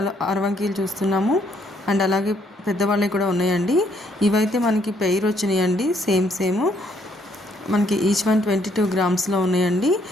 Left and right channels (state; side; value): normal; both; correlation 0.69